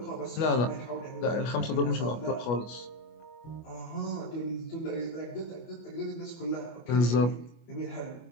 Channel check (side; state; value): right; late; 25 ms